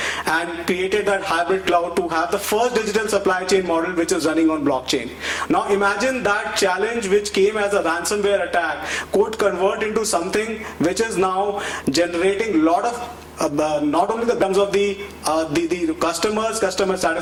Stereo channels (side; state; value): both; identical; correlation 1.00